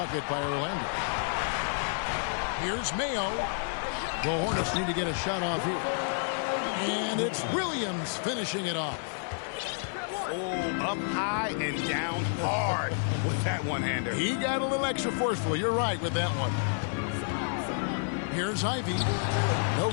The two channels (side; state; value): right; silent; 58 dB below the other